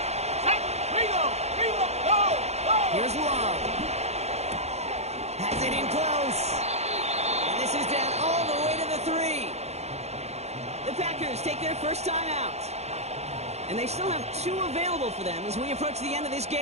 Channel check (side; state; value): left; late; 0.31 ms